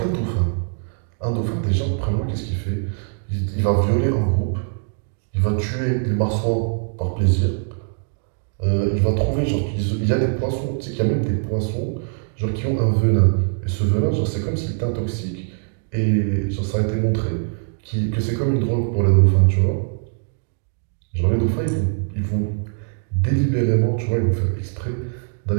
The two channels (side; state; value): left; silent; 64 dB below the other